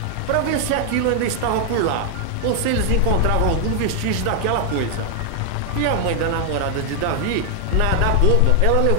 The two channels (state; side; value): different; both; correlation 0.00